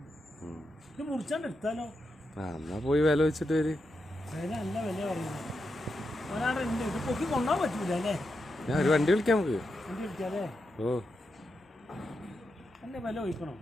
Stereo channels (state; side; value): normal; both; correlation 0.86